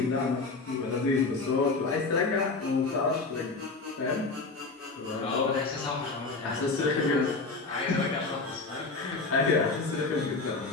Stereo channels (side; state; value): right; quieter; 3.8 dB